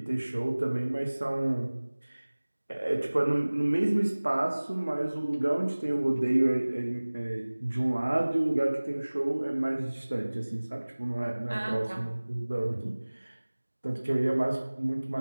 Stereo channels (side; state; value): both; inverted; correlation -1.00